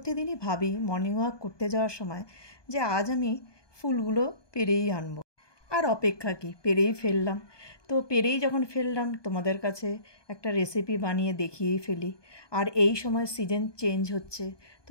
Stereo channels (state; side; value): late; right; 1.2 ms